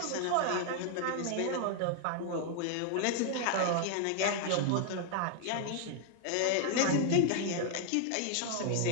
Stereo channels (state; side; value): different; both; correlation 0.00